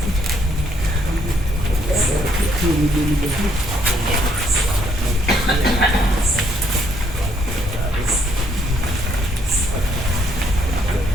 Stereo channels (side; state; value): both; normal; correlation 0.69